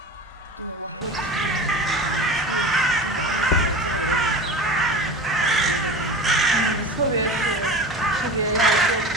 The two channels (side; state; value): both; normal; correlation 0.32